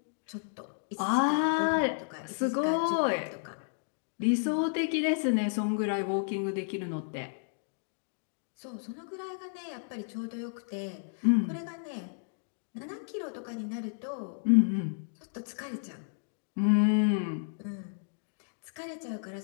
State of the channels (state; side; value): silent; right; digital silence